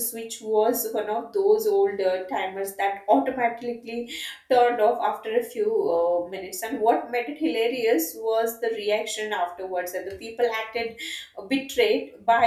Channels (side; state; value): both; identical; correlation 1.00